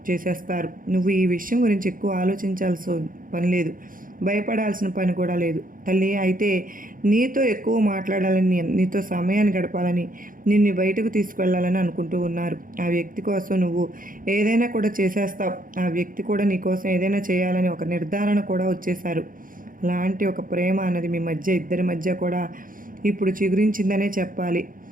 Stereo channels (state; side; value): late; left; 0.40 ms